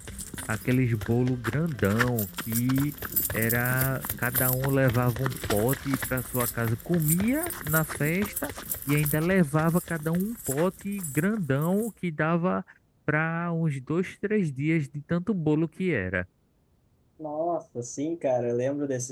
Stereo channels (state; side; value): identical; both; correlation 1.00